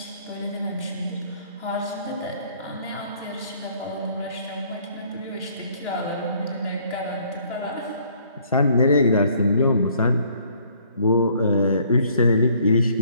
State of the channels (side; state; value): both; inverted; correlation -0.61